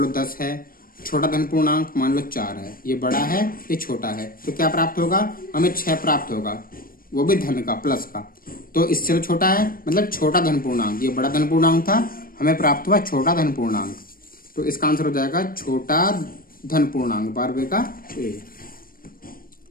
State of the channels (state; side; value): late; right; 0.41 ms